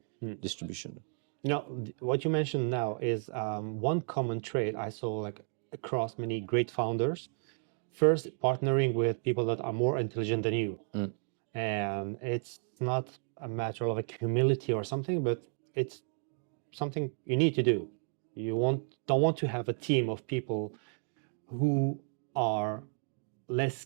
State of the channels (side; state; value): left; silent; 56 dB below the other